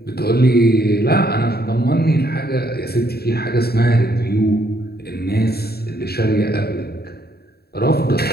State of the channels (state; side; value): late; right; 0.46 ms